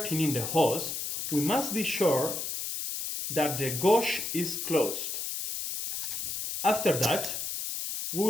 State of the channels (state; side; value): noise; left; hiss, 4 dB below the sound